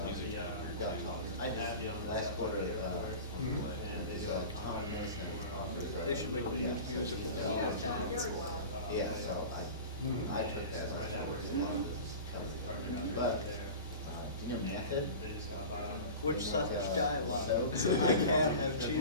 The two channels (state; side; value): inverted; both; correlation -0.34